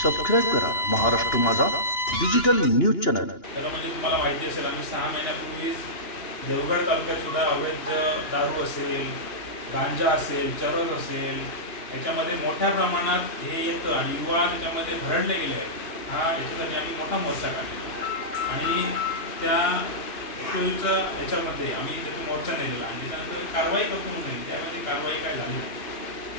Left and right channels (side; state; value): right; late; 2.9 ms